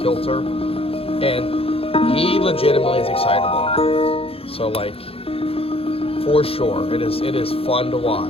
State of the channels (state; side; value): late; right; 0.27 ms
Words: and he legitimately is excitable. So like, for sure, it is fun to